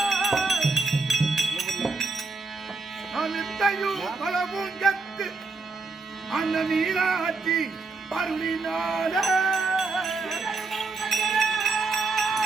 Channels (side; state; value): left; quieter; 3.9 dB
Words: பலவும் கத்து அந்த மீனாட்சி பருளினால